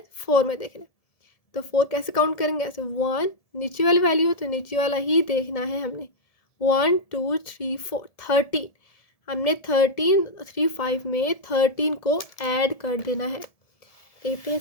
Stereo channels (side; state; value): right; late; 1.7 ms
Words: 4 में देखना। तो 4 कैसे काउंट करेंगे, ऐसे 1 नीचे वाली वैल्यू हो तो नीचे वाला ही देखना है हमने। 1 2 3 4 13, हमने 13 3 5 में 13 को ऐड कर देना है। देखते हैं